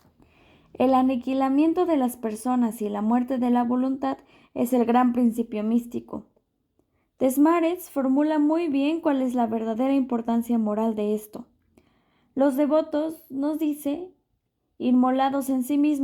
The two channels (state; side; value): identical; both; correlation 1.00